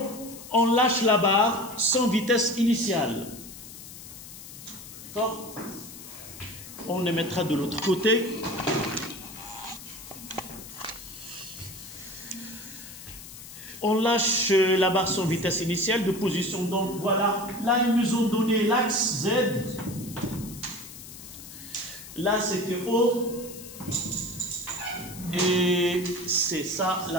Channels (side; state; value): left; noise; hiss, 14 dB below the sound